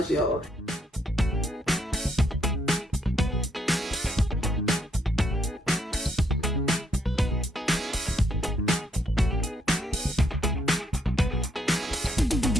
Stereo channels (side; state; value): both; normal; correlation 0.73